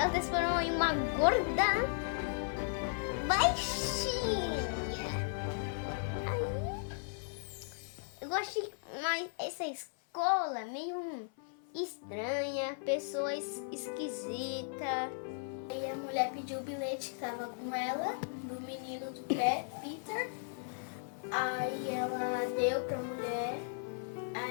transformou em uma gorda baixinha. Aí eu gosto mais essa escola meio estranha, pessoas esquisitas. Aí a mulher pediu o bilhete que tava com ela, do menino do Peter. Aí ela deu pra mulher.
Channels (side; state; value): right; silent; 54 dB below the other